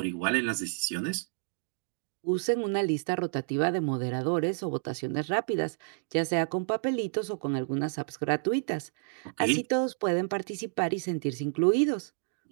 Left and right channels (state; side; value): silent; left; digital silence